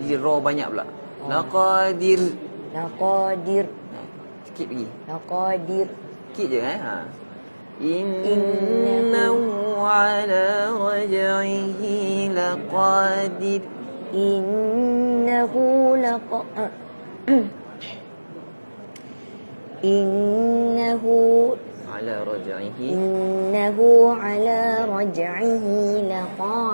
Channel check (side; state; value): both; inverted; correlation -1.00